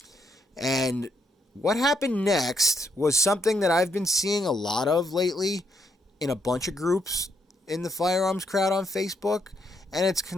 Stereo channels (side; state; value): both; normal; correlation 0.76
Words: And What happened next was something that I've been seeing a lot of lately in a bunch of groups in the firearms crowd on Facebook, and it's